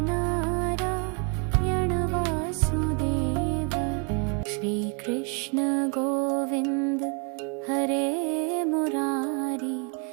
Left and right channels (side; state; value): left; quieter; 37.3 dB